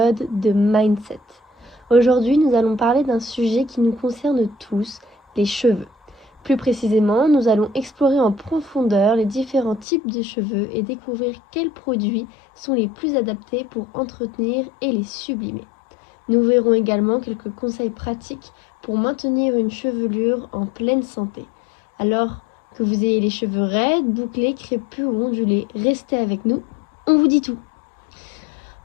de Mindset. Aujourd'hui, nous allons parler d'un sujet qui nous concerne tous, les cheveux. Plus précisément, nous allons explorer en profondeur les différents types de cheveux et découvrir quels produits sont les plus adaptés pour entretenir et les sublimer. Nous verrons également quelques conseils pratiques pour maintenir une chevelure en pleine santé. Alors que vous ayez les cheveux raides, bouclés, crépus ou ondulés, restez avec nous, on vous dit tout.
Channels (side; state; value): right; drops out; at 9.9 s